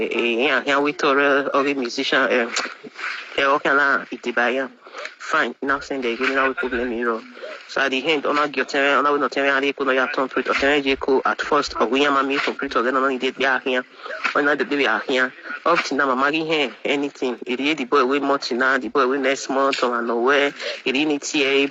we told a musician. Fine, now send the gear. Now we problem hero. So at the end, on our get on our not telling how they could not complete or tell at first or we are me complete or then only did here. Or not the baby are here. Up to now, I'm here anything. It is the boy with much now, the boy with next month or nowhere. It is TA,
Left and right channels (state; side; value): identical; both; correlation 1.00